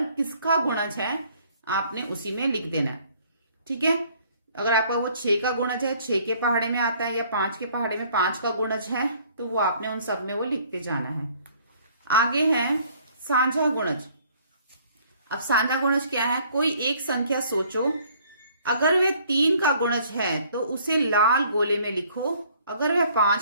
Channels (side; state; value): both; inverted; correlation -0.59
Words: किसका गुणज है आपने उसी में लिख देना है। ठीक है, अगर आपका वो 6 का गुणज है, 6 के पहाड़े में आता है, या 5 के पहाड़े में 5 का गुणज है, तो वो आपने उन सब में वो लिखते जाना है। आगे है साझा गुणज। अब साझा गुणज क्या है, कोई एक संख्या सोचो, अगर वह 3 का गुणज है तो उसे लाल गोले में लिखो, अगर वह